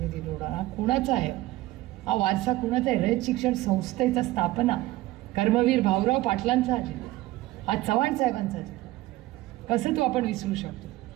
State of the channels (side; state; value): left; quieter; 17.4 dB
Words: निवडा। हा कुणाचा आहे? हा वारसा कुणाचा आहे? रयत शिक्षण संस्थेचा स्थापना कर्मवीर भाऊराव पाटलांचा आहे, हा चव्हाण साहेबांचा आहे, कसं तो आपण विसरू शकतो?